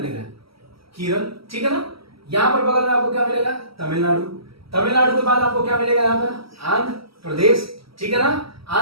केरल, ठीक है ना। यहां पर बगल में आपको क्या मिलेगा, तमिलनाडु के बाद आपको क्या मिलेगा, यहां पर आंध्र प्रदेश, ठीक है ना।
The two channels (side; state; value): left; late; 0.75 ms